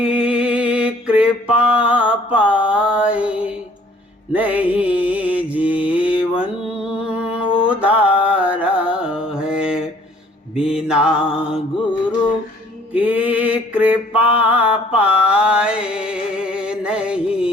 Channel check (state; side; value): normal; both; correlation 0.57